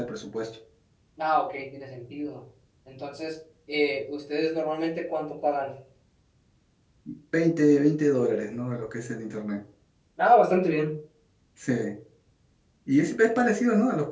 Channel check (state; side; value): identical; both; correlation 1.00